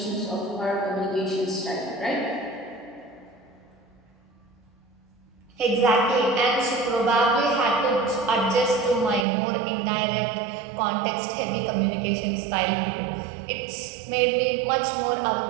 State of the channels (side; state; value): left; drops out; at 9.2 s